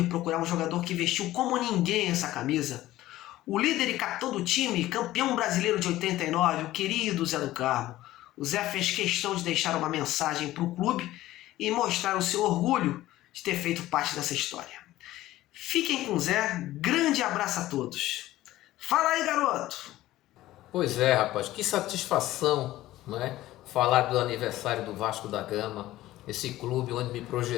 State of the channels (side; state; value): right; quieter; 15.6 dB